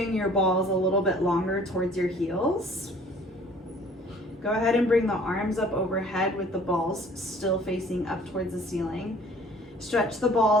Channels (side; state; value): both; normal; correlation 0.53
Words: your balls a little bit longer towards your heels. Go ahead and bring the arms up overhead with the balls still facing up towards the ceiling. Stretch the